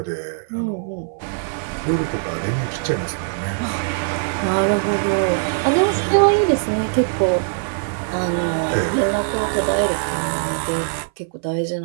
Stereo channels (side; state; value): left; silent; 60 dB below the other